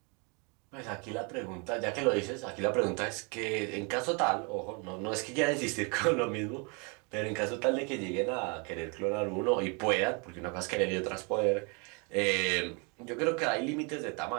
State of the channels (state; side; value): quieter; left; 33.0 dB